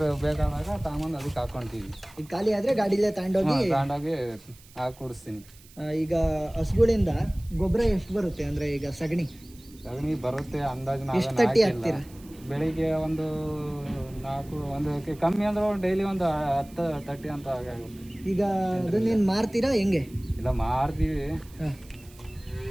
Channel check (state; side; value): noise; right; hiss, 24 dB below the sound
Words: ಬೇಕಾದಾಗ ತಾಮಂದು ಅದಕ್ಕೆ ಹಾಕೊಂತೀವಿ. ಈಗ ಖಾಲಿ ಆದ್ರೆ ಗಾಡಿಲೇ ತಗೊಂಡೋಗಿ ಹಾಕಿ ಕುಡಿಸ್ತೀನಿ. ಈಗ ಹಸುಗಳಿಂದ ಗೊಬ್ಬರ ಎಷ್ಟು ಬರುತ್ತೆ? ಅಂದ್ರೆ ಈಗ ಸಗಣಿ ಬರುತ್ತೆ ಅಂದಾಜು. ಎಷ್ಟು ತಟ್ಟಿ ಹಾಕ್ತೀರಾ? ಬೆಳಿಗ್ಗೆ ಒಂದು 4 ಒಂದು ಕಮ್ಮಿ ಅಂದ್ರೆ ಡೈಲಿ ಒಂದು 10-30 ಅಂತ ಆಗುತ್ತೆ. ಈಗ ಅದನ್ನೇನು ಮಾರ್ತೀರಾ ಹೆಂಗೆ? ಇಲ್ಲ ಮಾರ್ತೀವಿ. ಹಾಂ,